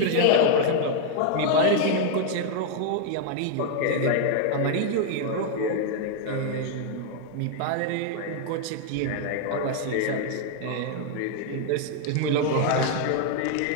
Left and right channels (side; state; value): both; different; correlation 0.00